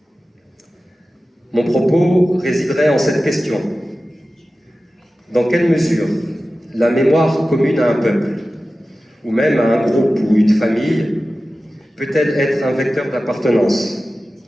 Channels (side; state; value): both; normal; correlation 0.95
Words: Mon propos résiderait en cette question. Dans quelle mesure la mémoire commune à un peuple, ou même à un groupe ou une famille, peut-elle être un vecteur d'appartenance,